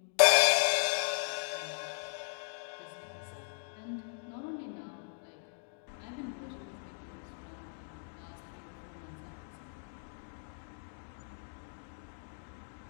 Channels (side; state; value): right; silent; digital silence